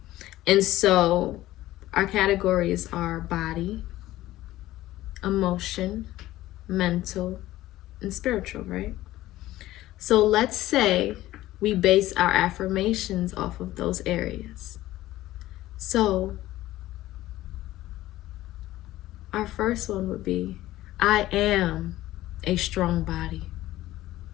And so our categories are body, emotion, mental, and spiritual, right? So let's say we base our affirmations off of those areas. So our first one would be, I am a strong body.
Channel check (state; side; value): quieter; right; 15.7 dB